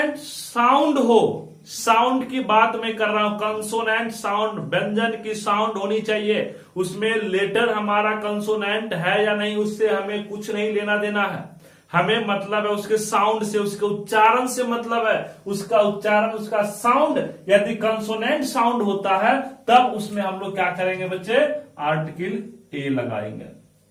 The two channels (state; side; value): identical; both; correlation 1.00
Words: साउंड हो, साउंड की बात मैं कर रहा हूं, कंसोनेंट साउंड, व्यंजन की साउंड होनी चाहिए, उसमें लेटर हमारा कंसोनेंट है या नहीं उससे हमें कुछ नहीं लेना देना है। हमें मतलब है उसके साउंड से, उसके उच्चारण से मतलब है। उसका उच्चारण, उसका साउंड यदि कंसोनेंट साउंड होता है तब उसमें हम लोग क्या करेंगे बच्चे, आर्टिकल ए लगाएंगे।